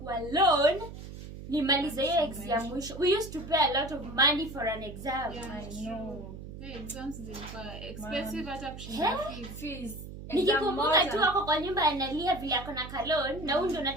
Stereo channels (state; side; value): noise; right; hum, 12 dB below the sound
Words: loan nimalize hiyo exam mwisho. We used to pay a lot of money for an exam. Yeah, I know. The exams zilikuwa expensive hata kushinda fees. Nikikumbuka tu wako kwa nyumba analia vile ako na kalon na huyu ndo